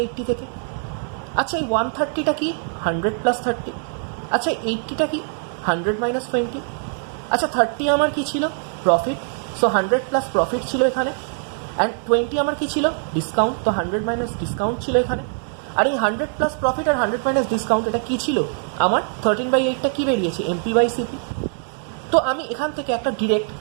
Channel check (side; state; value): left; silent; 56 dB below the other